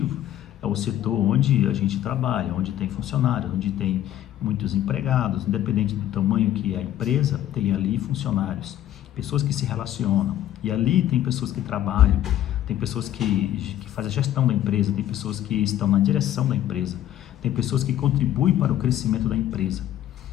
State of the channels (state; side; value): quieter; right; 12.3 dB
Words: É o setor onde a gente trabalha, onde tem funcionários, onde tem muitos empregados, independente do tamanho que é a empresa, tem ali funcionários, pessoas que se relacionam, e ali tem pessoas que trabalham, tem pessoas que fazem a gestão da empresa, tem pessoas que estão na direção da empresa, tem pessoas que contribuem para o crescimento da empresa,